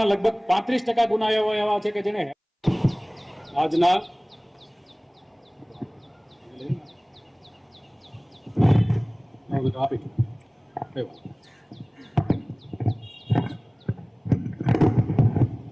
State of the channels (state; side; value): identical; both; correlation 1.00